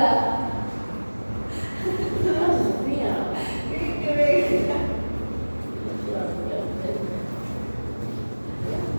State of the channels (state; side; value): inverted; both; correlation -1.00